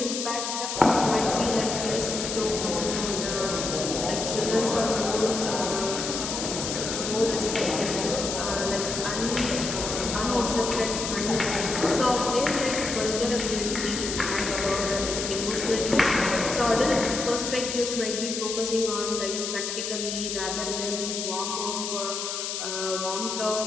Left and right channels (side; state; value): left; noise; hiss, 4 dB below the sound